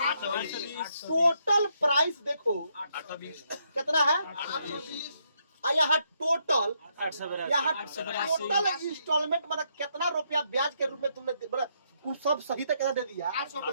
प्राइस देखो कितना है, यहाँ टोटल इंस्टॉलमेंट मतलब कितना रुपया ब्याज के रूप में तुमने मतलब सब सही तक कितना दे दिया,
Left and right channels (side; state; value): both; inverted; correlation -0.76